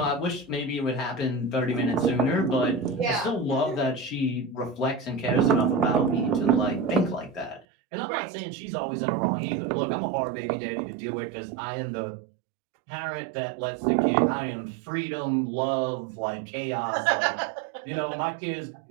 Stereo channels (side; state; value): left; drops out; at 7.7 s